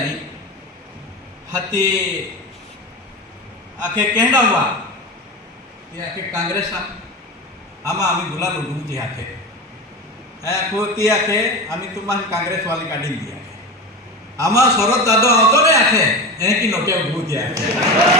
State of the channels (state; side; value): normal; both; correlation 0.25